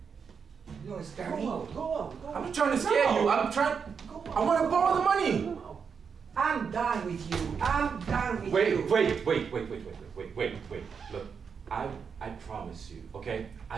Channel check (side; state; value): left; quieter; 6.2 dB